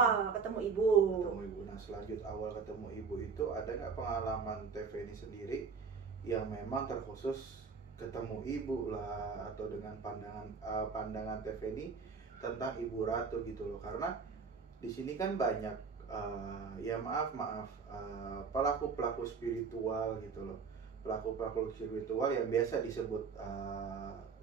ketemu Ibu. Ketemu Ibu. Nah, selanjut awal ketemu Ibu itu ada nggak pengalaman TV ini sendiri yang memang terkhusus ketemu Ibu lah, atau dengan pandangan TV ini tentang Ibu Ratu gitu loh? Karena di sini kan banyak pelaku-pelaku spiritual gitu loh, pelaku-pelaku spiritual yang biasa disebut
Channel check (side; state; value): left; quieter; 5.4 dB